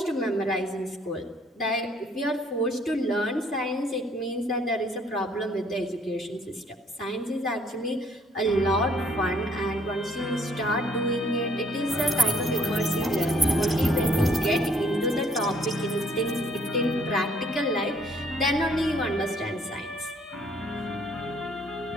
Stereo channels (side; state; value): both; normal; correlation 0.63